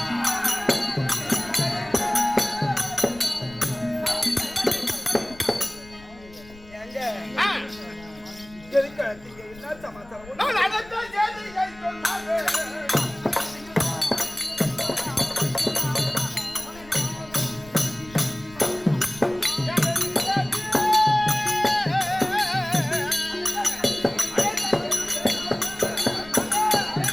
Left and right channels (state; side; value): noise; left; rumble, 22 dB below the sound